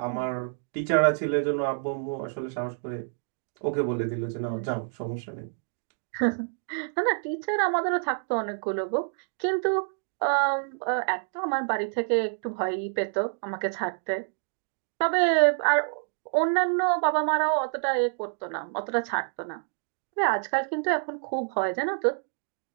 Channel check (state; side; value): silent; left; digital silence